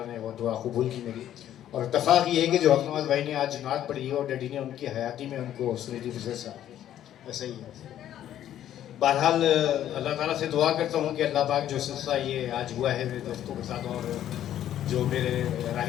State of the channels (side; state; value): right; quieter; 11.5 dB